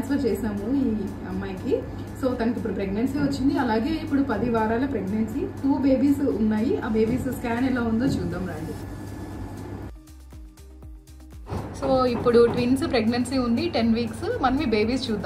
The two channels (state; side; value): identical; both; correlation 1.00